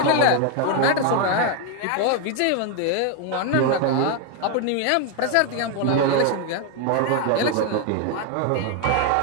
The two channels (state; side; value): different; both; correlation 0.01